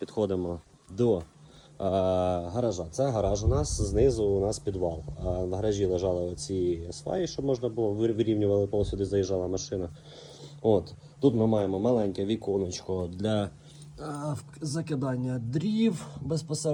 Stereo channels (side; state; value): both; identical; correlation 1.00